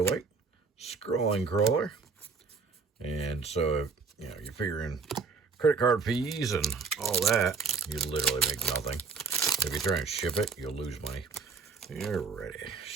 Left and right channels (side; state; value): left; quieter; 4.9 dB